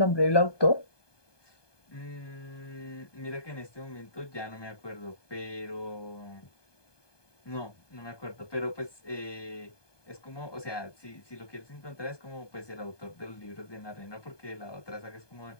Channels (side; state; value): right; late; 1.2 ms